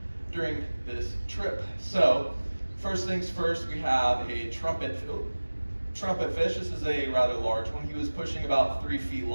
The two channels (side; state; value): both; inverted; correlation -1.00